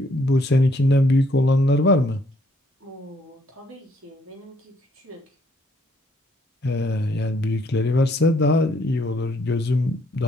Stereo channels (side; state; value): both; normal; correlation 0.68